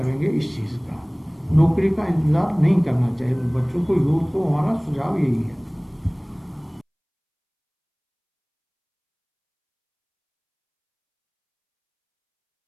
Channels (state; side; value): identical; both; correlation 1.00